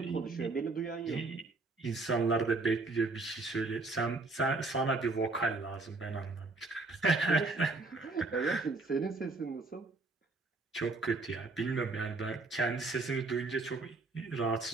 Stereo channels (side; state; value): left; quieter; 3.5 dB